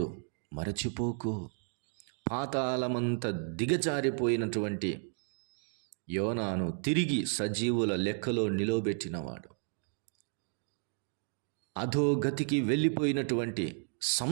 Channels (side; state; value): left; silent; 56 dB below the other